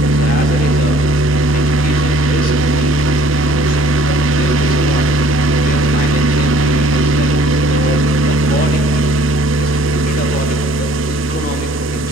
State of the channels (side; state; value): both; normal; correlation 0.56